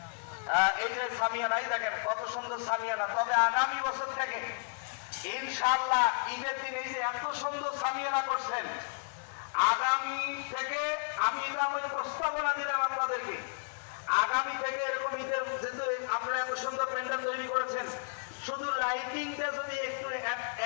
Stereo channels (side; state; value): right; silent; digital silence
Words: এই যে সামিয়ানাই দেখেন কত সুন্দর সামিয়ানা। তবে আগামী বছর থেকে ইনশাআল্লাহ ঈদের দিন এই যে এত সুন্দর সামিয়ানা করছেন, আগামী থেকে আমি এটা আমার প্রস্তাবনা দিলাম আপনাদেরকে, আগামী থেকে এরকম ঈদের যেহেতু আপনারা এত সুন্দর প্যান্ডেল তৈরি করেছেন, শুধু লাইটিংটা যদি একটু